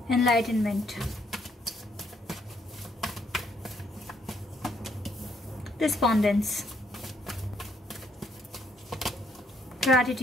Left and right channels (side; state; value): both; normal; correlation 0.70